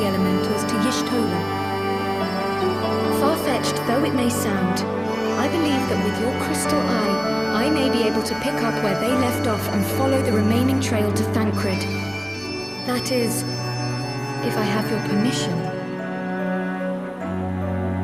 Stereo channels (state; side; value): identical; both; correlation 1.00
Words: elementals to Y'shtola. Far-fetched though it may sound, I believe that with your crystal eye, I may be able to pick up where they left off and follow the remaining trail to Thancred. That is, if I have your permission.